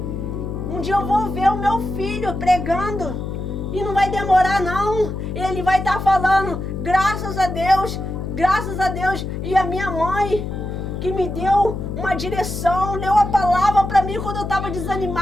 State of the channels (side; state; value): left; noise; hum, 5 dB below the sound